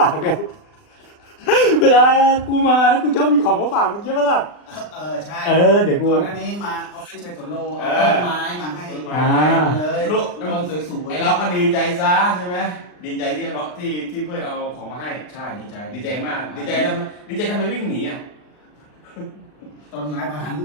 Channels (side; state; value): right; late; 39 ms